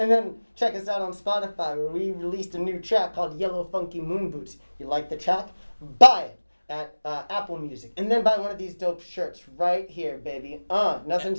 then check us out on Spotify where we released a new track called Yellow Funky Moon Boots. You like the track? Buy it at Apple Music, and then buy one of these dope shirts right here, baby. Nothing's And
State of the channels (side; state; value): both; inverted; correlation -1.00